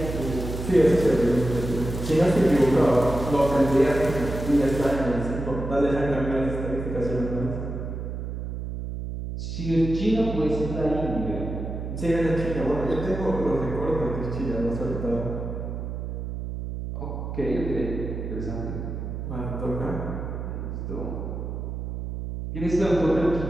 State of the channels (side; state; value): right; noise; hum, 6 dB below the sound